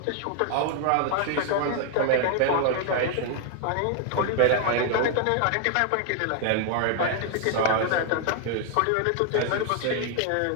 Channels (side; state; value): both; different; correlation 0.00